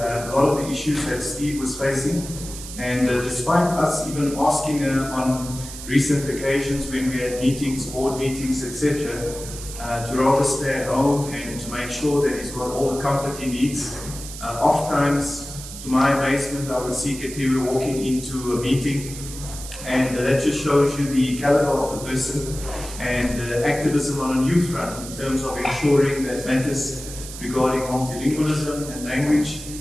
lot of the issues that Steve was facing. And despite us even asking her on recent occasions when we had meetings, board meetings, etc., to rather stay at home and to make sure that he's got all the comfort he needs. Oftentimes, to my amazement, I would see Katiwe walking into a meeting, and that just shows you the caliber of the person and activism on a new front in terms of ensuring that matters regarding multilingualism and language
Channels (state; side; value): noise; right; hiss, 12 dB below the sound